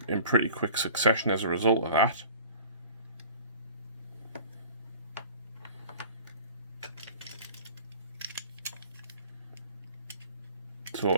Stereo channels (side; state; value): both; inverted; correlation -0.45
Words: in pretty quick succession as a result of that. So